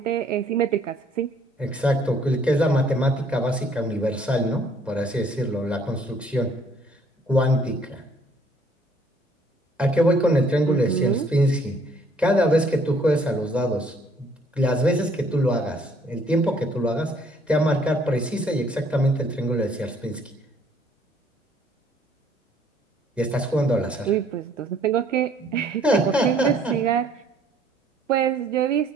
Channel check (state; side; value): normal; both; correlation 0.62